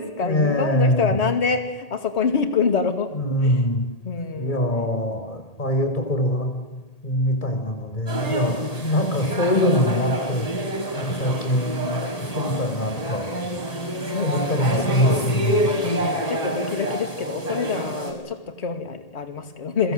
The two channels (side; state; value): right; late; 1.8 ms